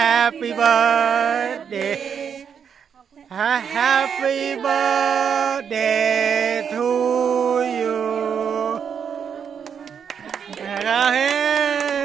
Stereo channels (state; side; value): quieter; left; 7.3 dB